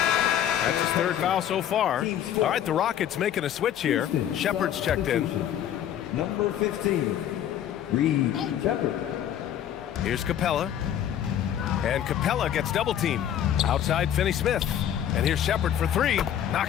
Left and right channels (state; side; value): quieter; right; 10.4 dB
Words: That's his third foul so far. All right, the Rockets making a switch here. Shepard's checked in. Number 15, Reed Shepard. Here's Capella. And Capella gets double teamed. Outside Finney-Smith. And here's Shepard for three.